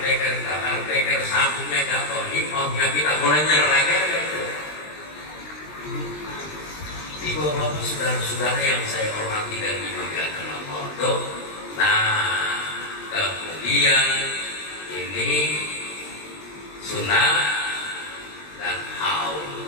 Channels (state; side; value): late; right; 20 ms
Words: sabuknya jatuh impahnya kita mulai nyerah gitu. Ibu bapak saudara-saudara yang saya hormati dan dimuliakan Allah. Nah, kemudian ini sunnah dan haul.